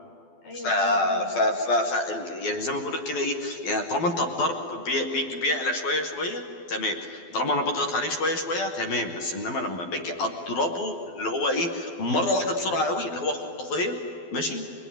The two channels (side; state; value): right; late; 12 ms